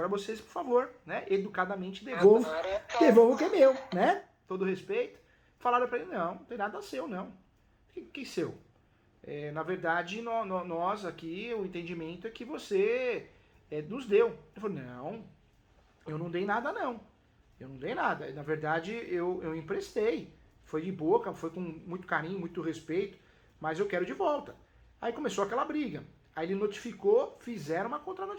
vocês, por favor, né, educadamente devolvam o que é meu, né? Todo respeito. Falaram para ele, não tem nada seu, não. Que seu? Na verdade, nós aqui, o entendimento é que você nos deu. Ele falou, não, eu não dei nada, não. Eu não dei nada. Na verdade, eu emprestei. Foi de boca, foi com muito carinho, muito respeito, mas eu quero de volta. Aí começou aquela briga. Aí ele notificou, fizeram uma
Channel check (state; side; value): identical; both; correlation 1.00